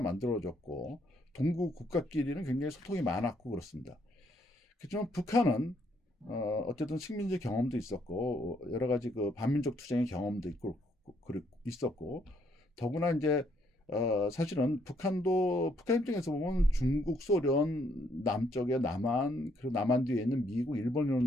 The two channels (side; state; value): both; normal; correlation 0.71